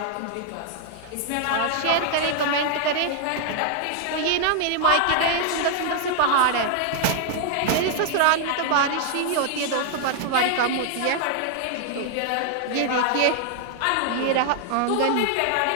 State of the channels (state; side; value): different; both; correlation -0.01